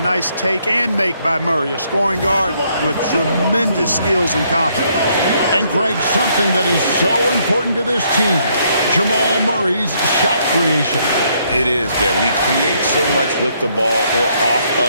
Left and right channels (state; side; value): inverted; both; correlation -0.71